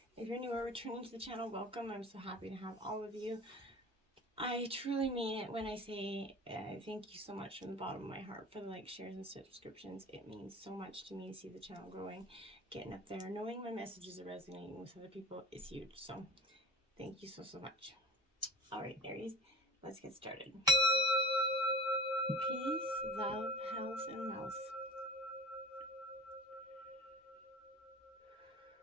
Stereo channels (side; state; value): both; normal; correlation 0.36